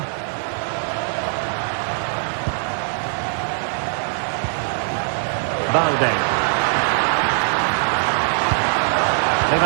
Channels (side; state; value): left; silent; 65 dB below the other